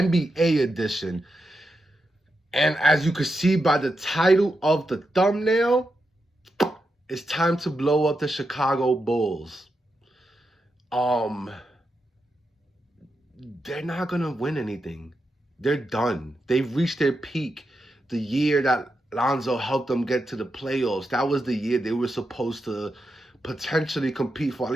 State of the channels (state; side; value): normal; both; correlation 0.86